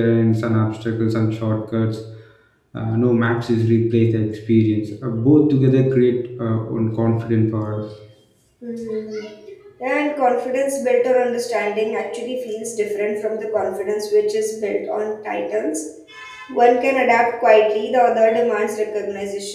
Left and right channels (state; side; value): identical; both; correlation 1.00